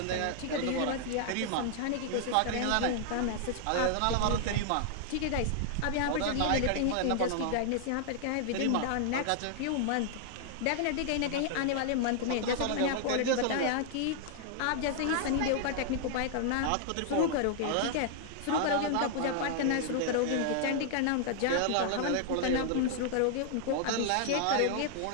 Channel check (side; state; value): both; different; correlation -0.01